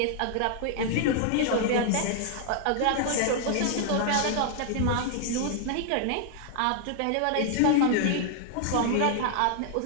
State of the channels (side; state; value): both; different; correlation 0.00